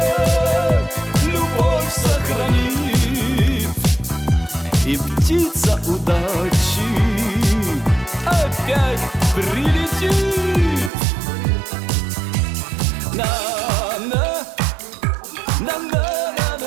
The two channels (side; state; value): left; drops out; at 10.9 s